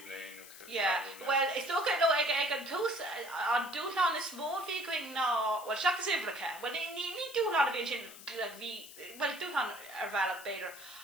blian. Well, it's okay though. I can toast on dúchlan is smó fi going ná well seachas ifreacha. Well, ní dúchlan a bhíonn sin well dúchlan ar bhealach beidir.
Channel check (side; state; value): left; noise; hiss, 16 dB below the sound